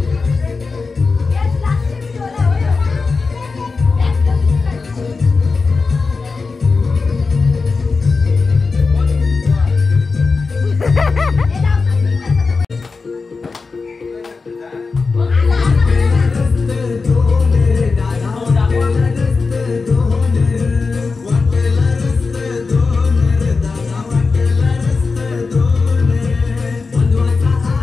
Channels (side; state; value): right; quieter; 4.4 dB